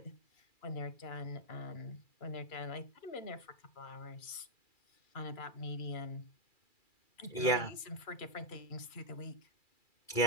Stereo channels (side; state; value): right; late; 2.4 ms